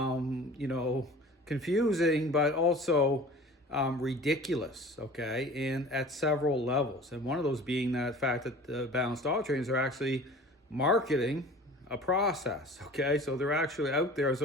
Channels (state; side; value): normal; both; correlation 0.43